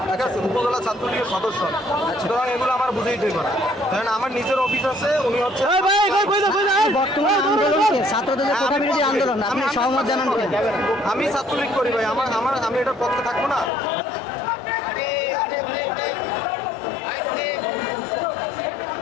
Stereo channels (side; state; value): right; drops out; at 13.7 s